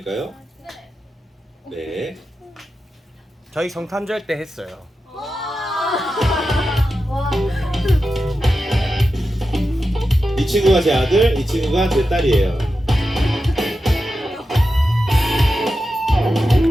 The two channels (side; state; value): both; normal; correlation 0.90